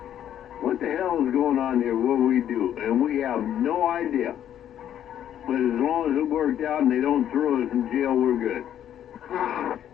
what the hell is going on here? What do we do? And we have no idea. But as long as it worked out and they don't throw us in jail, we're good.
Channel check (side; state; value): right; quieter; 10.5 dB